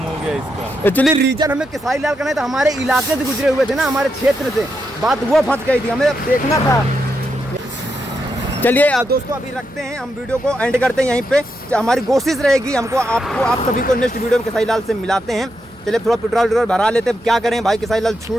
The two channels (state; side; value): normal; both; correlation 0.83